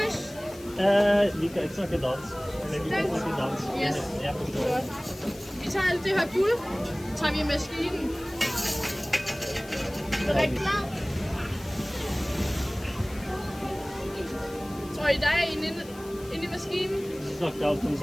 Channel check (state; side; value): noise; left; hiss, 20 dB below the sound